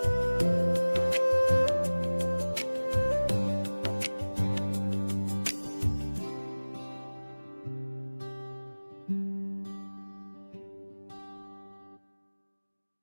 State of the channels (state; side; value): inverted; both; correlation -1.00